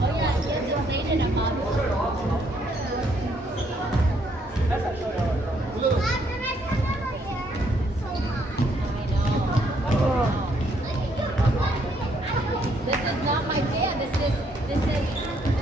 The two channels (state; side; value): normal; both; correlation 0.70